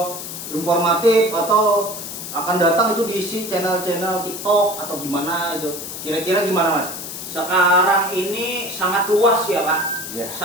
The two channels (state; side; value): noise; left; hiss, 8 dB below the sound